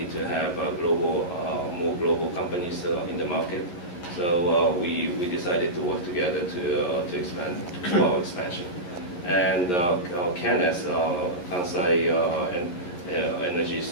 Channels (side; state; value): right; late; 11 ms